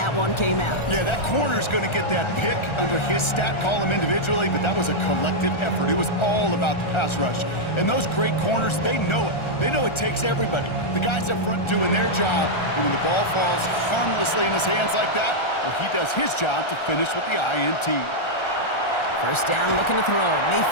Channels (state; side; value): late; right; 1.4 ms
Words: one came out. Yeah, that corner's going to get that pick under his stat column individually, but that was a collective effort. It was all about the pass rush. And those great corners, they know it. They know it takes everybody. The guys up front doing their job, and when the ball falls harmlessly in his hands like that, well, he does his job to finish with the INT. First down, looking to throw.